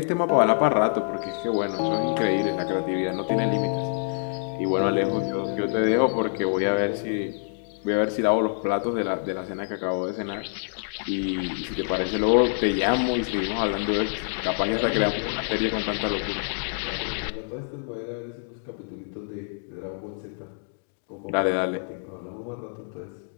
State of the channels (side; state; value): right; silent; digital silence